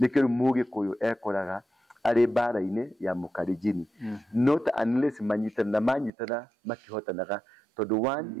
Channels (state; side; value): drops out; left; at 6.1 s